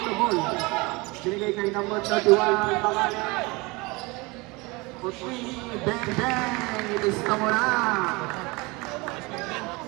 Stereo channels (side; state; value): left; quieter; 25.0 dB